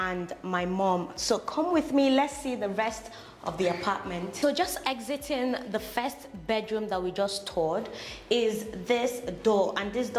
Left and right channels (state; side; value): identical; both; correlation 1.00